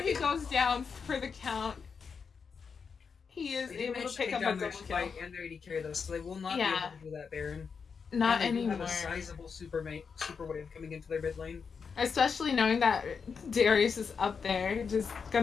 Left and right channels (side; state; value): right; quieter; 5.9 dB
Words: he it- goes down for the count, he is they did able to manage to pick take up a down their double kill. fight and their AD carry though, so they will not be Yeah, able to do that Baron. not And they do have anymore. a sizable super wave coming into their mid lane. Especially knowing that Darius is up there, just